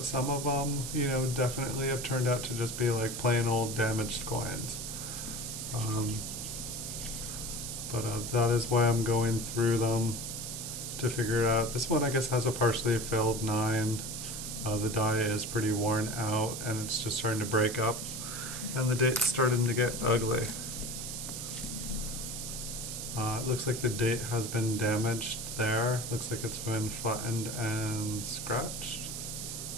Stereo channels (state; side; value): noise; right; hiss, 6 dB below the sound